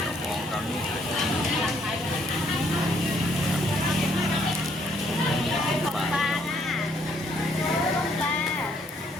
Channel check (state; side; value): normal; both; correlation 0.68